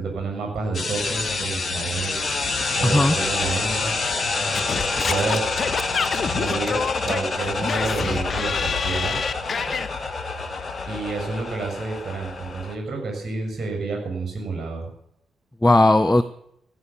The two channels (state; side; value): normal; both; correlation 0.85